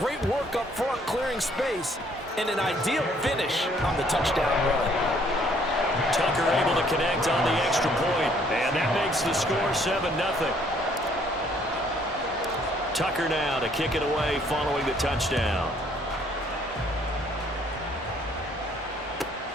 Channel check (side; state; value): both; normal; correlation 0.64